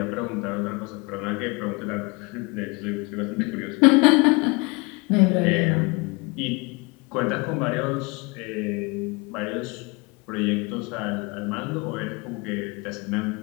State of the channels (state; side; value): quieter; right; 27.8 dB